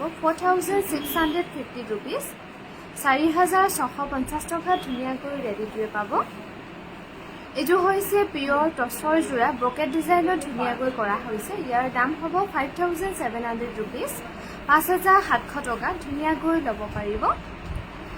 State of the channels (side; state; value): both; identical; correlation 1.00